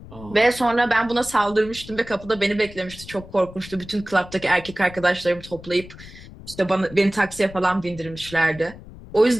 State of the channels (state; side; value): noise; left; rumble, 17 dB below the sound